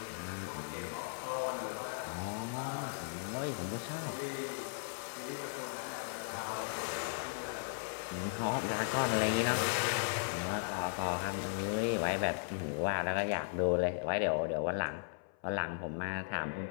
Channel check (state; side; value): silent; right; 53 dB below the other